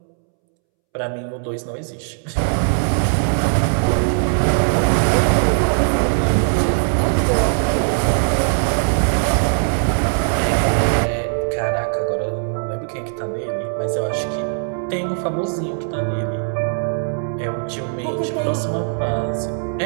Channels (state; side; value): silent; left; 66 dB below the other